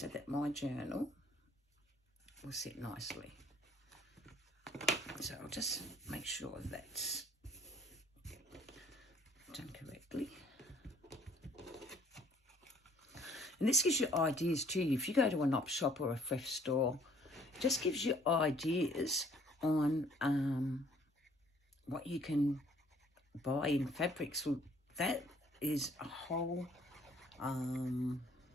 that my journal will sit nicely. So I'll just make sure that's done correctly. And this gives you ideas too. If you go to an op shop or a thrift store, it just gives you ideas on what you can buy in fabrics. Well, that is a whole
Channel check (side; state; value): both; normal; correlation 0.59